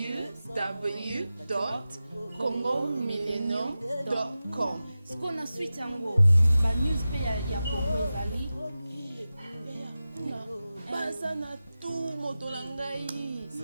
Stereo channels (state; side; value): inverted; both; correlation -0.94